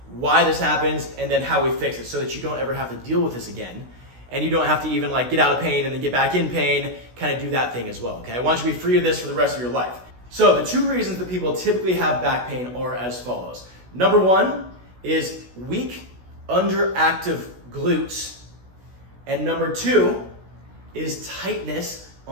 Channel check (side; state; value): left; late; 16 ms